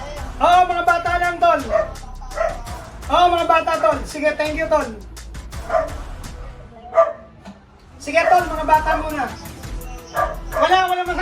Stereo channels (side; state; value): both; identical; correlation 1.00